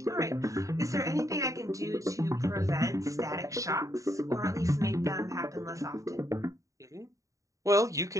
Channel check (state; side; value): late; left; 0.16 ms